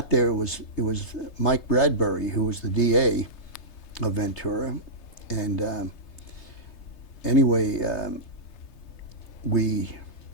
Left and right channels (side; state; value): right; late; 3.3 ms